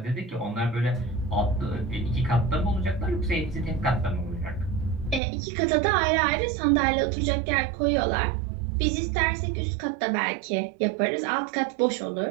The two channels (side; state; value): left; drops out; at 5.2 s